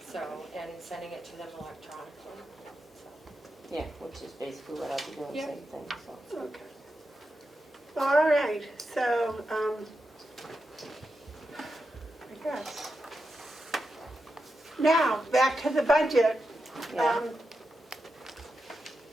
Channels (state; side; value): normal; both; correlation 0.88